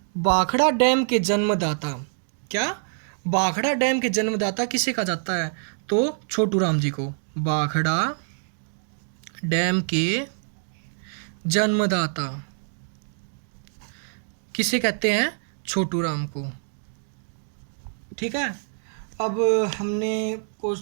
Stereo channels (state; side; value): silent; left; digital silence